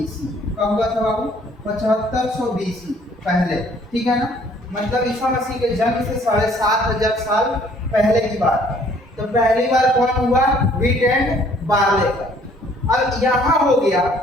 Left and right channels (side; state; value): both; normal; correlation 0.60